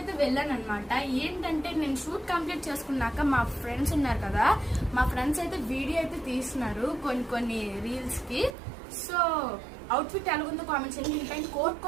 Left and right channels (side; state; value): left; drops out; at 8.6 s